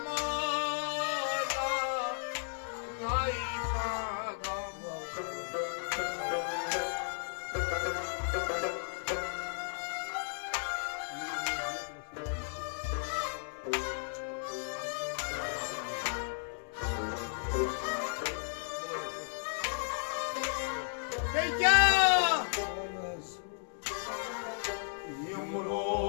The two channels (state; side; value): silent; right; digital silence